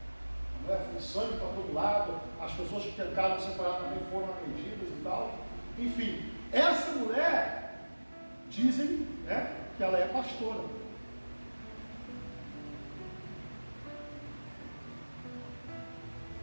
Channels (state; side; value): inverted; both; correlation -1.00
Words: a mulher foi sangue para todo lado, as pessoas que tentaram separar também foram agredidas e tal. Enfim, essa mulher, dizem, que ela é pastora.